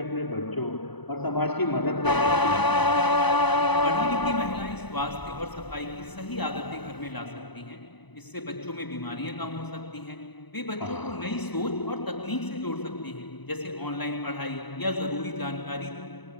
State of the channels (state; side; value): late; right; 1.0 ms